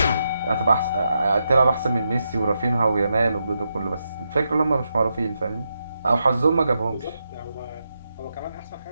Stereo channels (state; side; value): inverted; both; correlation -0.85